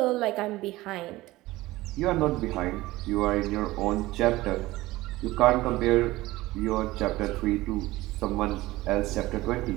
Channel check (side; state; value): left; quieter; 18.4 dB